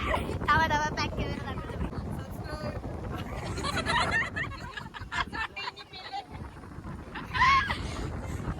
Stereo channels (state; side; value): identical; both; correlation 1.00